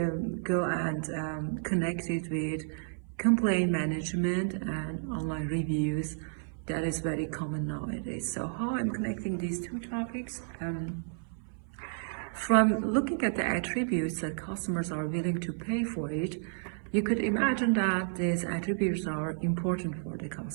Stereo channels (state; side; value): silent; left; 57 dB below the other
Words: go and connect it with complaint management and online reviews. That is very common nowadays. So how I'm connecting these two topics? From looking at the attributes that customers are willing to pay for it, you could imagine that these attributes are important for the